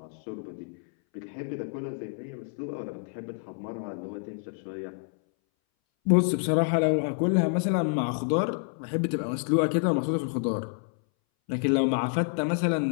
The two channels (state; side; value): silent; right; 59 dB below the other